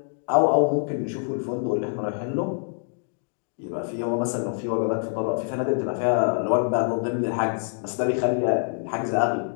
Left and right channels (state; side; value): silent; right; digital silence